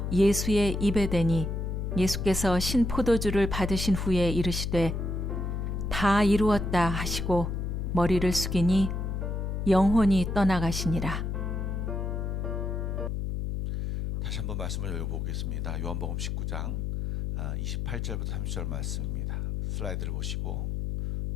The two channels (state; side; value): noise; left; hum, 2 dB below the sound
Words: 예수의 입에 대니 예수께서 신포도주를 받으신 후에 이르시되 다 이루었다 하시고 머리를 숙이니 영혼이 떠나가시니라. 다시 한번 말씀을 읽어보겠습니다. 요한복음 19장 28절부터 30절 말씀입니다. 슬라이드를 보시고